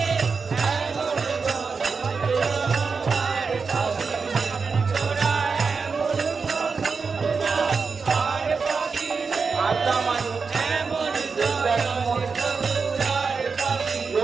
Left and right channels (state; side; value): quieter; left; 5.0 dB